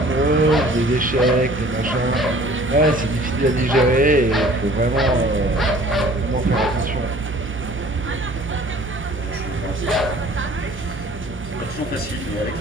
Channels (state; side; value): normal; both; correlation 0.51